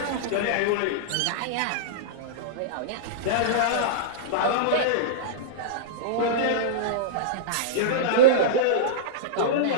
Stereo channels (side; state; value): both; different; correlation -0.03